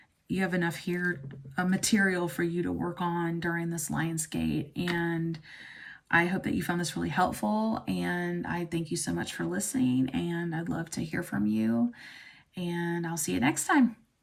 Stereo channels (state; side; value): identical; both; correlation 1.00